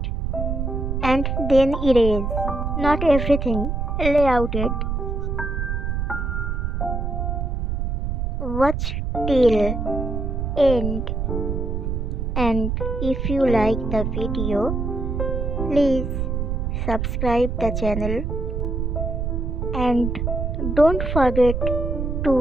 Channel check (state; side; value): noise; right; rumble, 1 dB below the sound